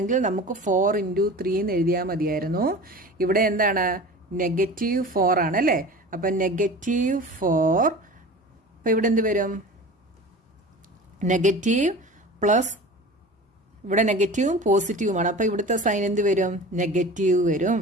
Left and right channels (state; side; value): normal; both; correlation 0.37